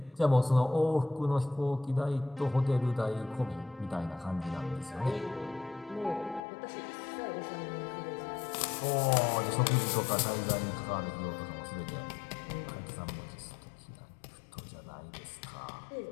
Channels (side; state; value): right; drops out; at 6.5 s